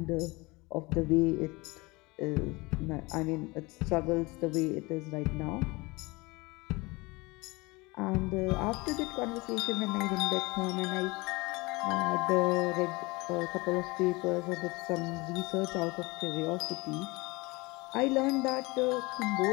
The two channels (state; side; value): quieter; right; 24.3 dB